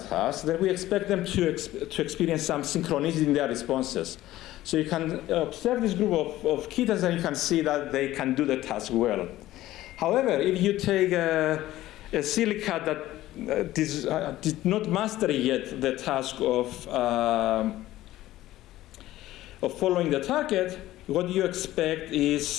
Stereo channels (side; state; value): right; quieter; 15.4 dB